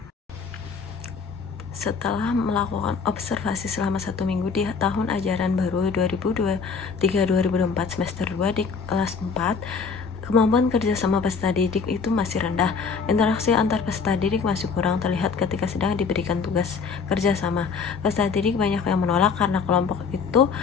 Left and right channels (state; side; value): quieter; right; 5.4 dB